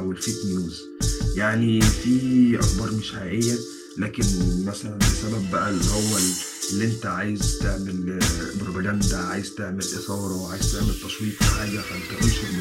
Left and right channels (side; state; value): both; identical; correlation 1.00